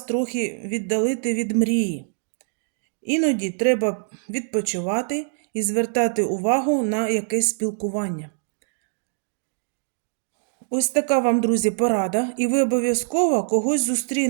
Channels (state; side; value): silent; left; digital silence